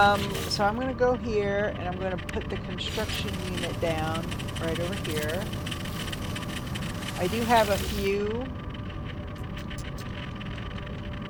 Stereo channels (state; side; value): identical; both; correlation 1.00